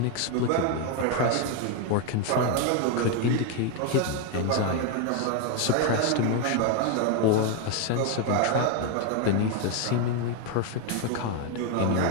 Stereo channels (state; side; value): different; both; correlation 0.01